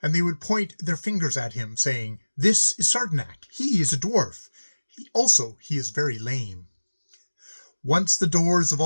And they would point their fingers at him, saying, "This is Srdnc. He is a dwarf. He is very lame." Once the doors of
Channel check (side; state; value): both; inverted; correlation -1.00